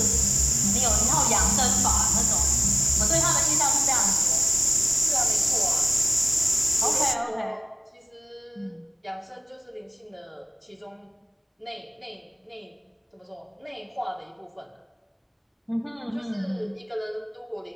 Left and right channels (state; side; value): identical; both; correlation 1.00